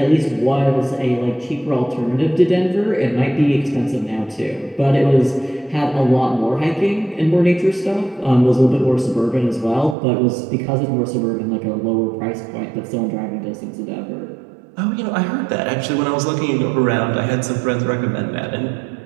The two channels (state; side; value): drops out; left; at 10.0 s